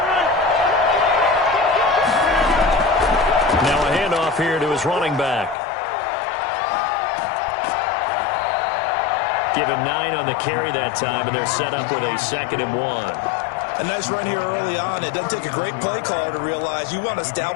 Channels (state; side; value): drops out; right; at 5.6 s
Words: Now a handoff here to his running back. Give him 9 on the carry that time, and they're set up with a 2nd and 1. A nice run here early on. It doesn't take a great play caller to realize you want to